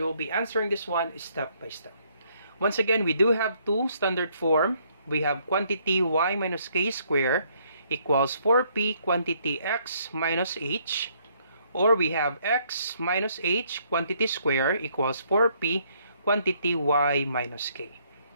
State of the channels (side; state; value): both; inverted; correlation -0.68